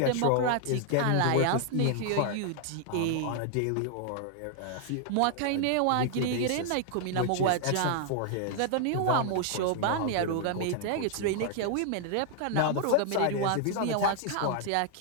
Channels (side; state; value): both; different; correlation 0.00